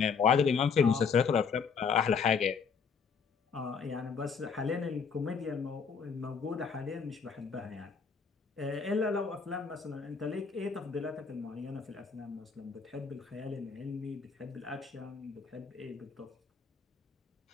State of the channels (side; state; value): right; quieter; 5.9 dB